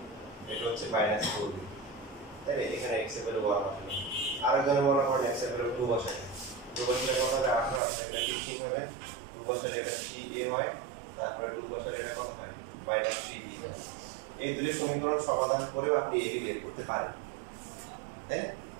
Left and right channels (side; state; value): left; drops out; at 7.8 s